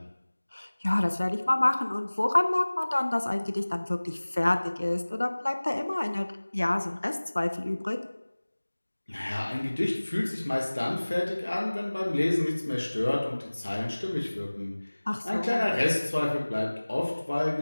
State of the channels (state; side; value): inverted; both; correlation -1.00